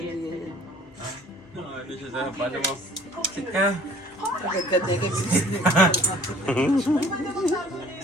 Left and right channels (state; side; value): normal; both; correlation 0.52